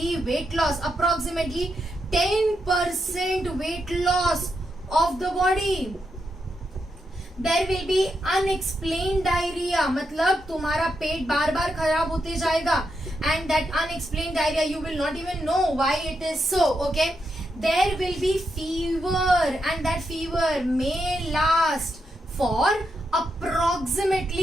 weight loss, approximately 10% weight loss of the body. There will be unexplained diarrhea, मतलब तुम्हारा पेट बार बार खराब होते जाएगा and that unexplained diarrhea you will not even know why it is so. Okay, there will be fever and that fever may last for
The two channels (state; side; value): normal; both; correlation 0.83